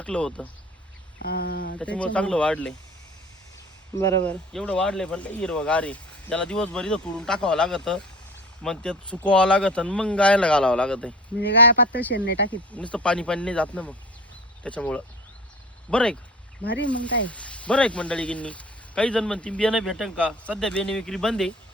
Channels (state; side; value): normal; both; correlation 0.39